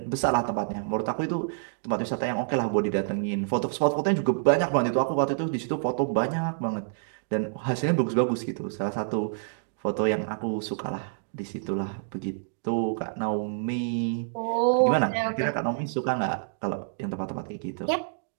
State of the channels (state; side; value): silent; left; digital silence